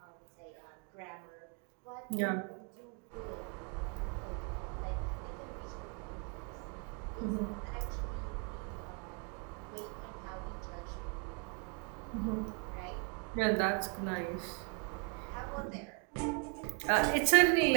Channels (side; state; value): left; quieter; 36.1 dB